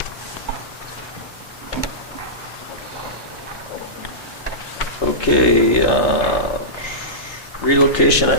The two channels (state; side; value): normal; both; correlation -0.17